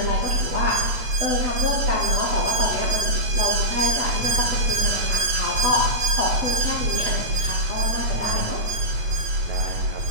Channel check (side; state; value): left; late; 8.8 ms